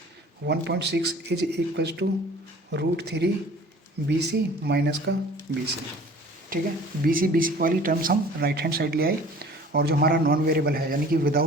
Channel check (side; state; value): both; normal; correlation 0.47